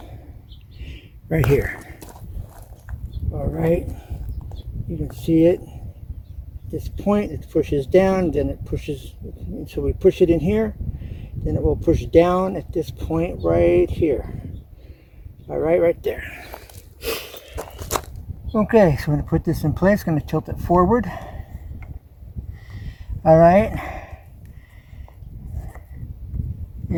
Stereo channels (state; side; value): identical; both; correlation 1.00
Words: Right here. All right, you can see it. At this point, it pushes down, then it pushes, so we push it in here, then it will push down at this point right here. All right, right there. Okay, so I'm going to put this in place, going to tilt it forward. All right.